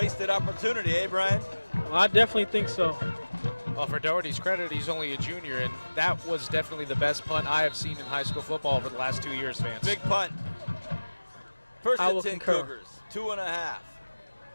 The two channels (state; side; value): inverted; both; correlation -1.00